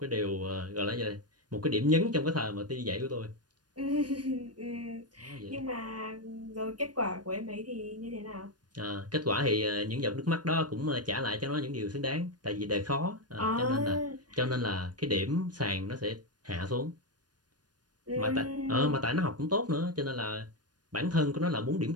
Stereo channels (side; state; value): left; late; 0.69 ms